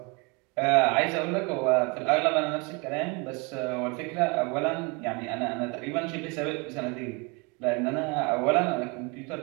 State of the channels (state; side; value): quieter; left; 28.7 dB